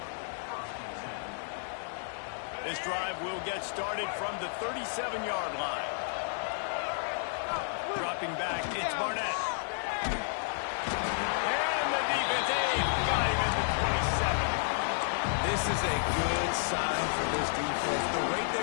This drive will get started from the 37-yard line. Dropping back, it's Barnett. And the defense got him at the 27. This is a good sign for this defense. The rate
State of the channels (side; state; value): right; silent; digital silence